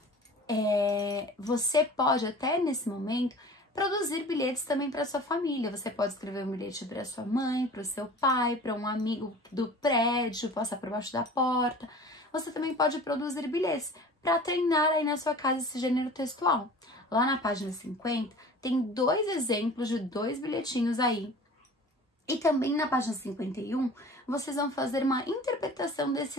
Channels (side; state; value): both; normal; correlation 0.41